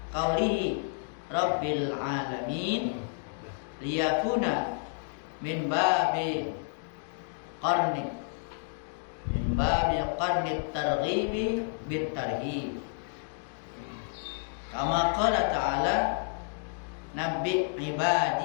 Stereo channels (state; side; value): silent; right; digital silence